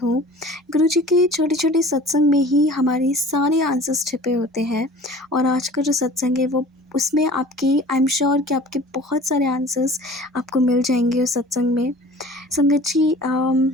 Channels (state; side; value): normal; both; correlation 0.44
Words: गुरुजी के छोटे छोटे सत्संग में ही हमारे सारे आंसर्स छिपे होते हैं। और आज का जो सत्संग है वो उसमें आपकी आई एम श्योर कि आपके बहुत सारे आंसर्स आपको मिल जाएंगे उस सत्संग में। संगत जी,